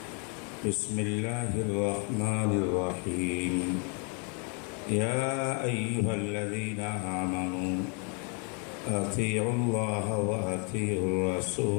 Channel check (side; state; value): right; quieter; 37.6 dB